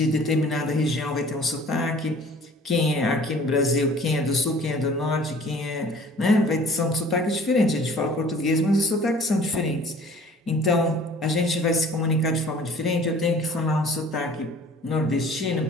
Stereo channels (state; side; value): normal; both; correlation 0.50